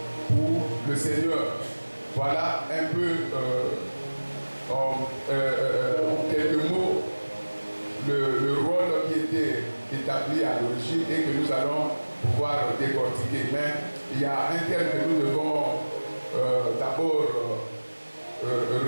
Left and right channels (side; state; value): both; inverted; correlation -1.00